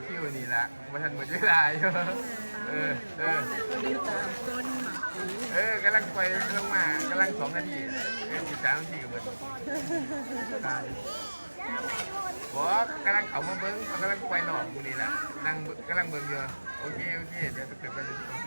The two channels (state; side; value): inverted; both; correlation -1.00